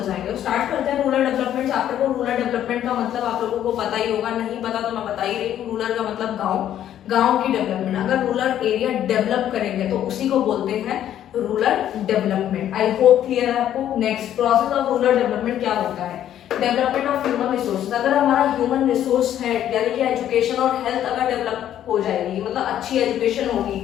जाएंगे। स्टार्ट करते हैं रूरल डेवलपमेंट चैप्टर को। रूरल डेवलपमेंट का मतलब आप लोगों को पता ही होगा, नहीं पता तो मैं बता ही रही हूँ। रूरल का मतलब गाँव की डेवलपमेंट। अगर रूरल एरिया डेवलप करेंगे तो उसी को बोलते हैं rural development. I hope clear है आपको। Next, process of rural development क्या होता है? Development of human resource. अगर हमारा ह्यूमन रिसोर्स है यानी कि एजुकेशन और हेल्थ अगर डेवलप हो जाएगी, मतलब अच्छी एजुकेशन होगी,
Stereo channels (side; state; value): right; quieter; 11.1 dB